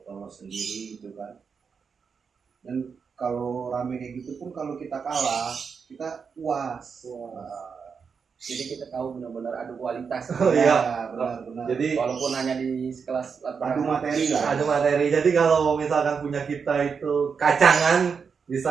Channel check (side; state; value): left; quieter; 5.9 dB